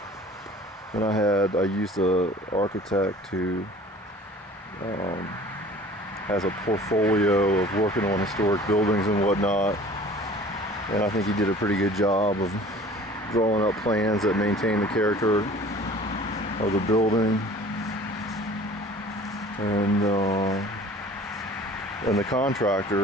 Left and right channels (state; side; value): normal; both; correlation 0.46